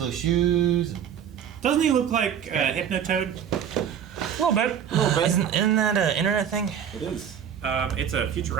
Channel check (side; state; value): left; quieter; 8.7 dB